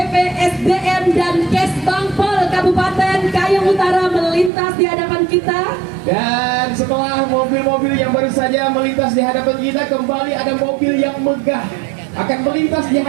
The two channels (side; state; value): left; drops out; at 4.5 s